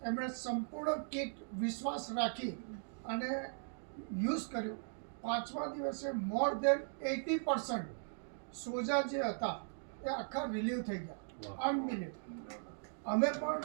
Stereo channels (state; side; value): silent; left; digital silence